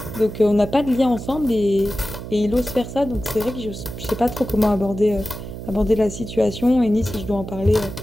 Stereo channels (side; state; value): right; noise; hum, 10 dB below the sound